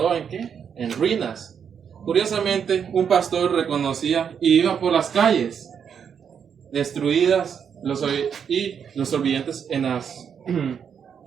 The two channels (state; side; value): quieter; left; 7.5 dB